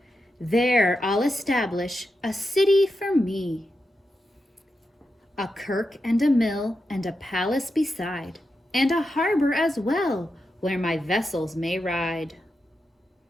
There I'll establish a city for me. A kirk and a mill and a palace beside, and a harbor as well, where my vessels may ride.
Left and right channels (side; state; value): both; normal; correlation 0.88